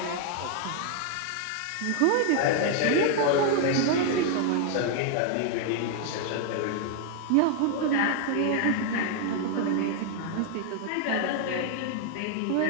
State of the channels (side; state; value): both; different; correlation 0.00